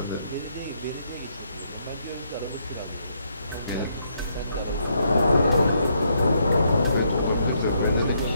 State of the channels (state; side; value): inverted; both; correlation -0.75